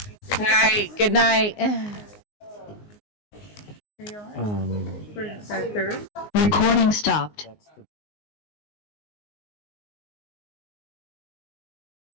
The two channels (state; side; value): late; right; 19 ms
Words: All right, good night. For that third? Recording stopped.